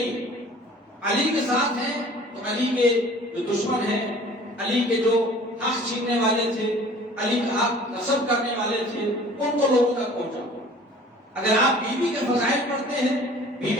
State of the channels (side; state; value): both; normal; correlation 0.49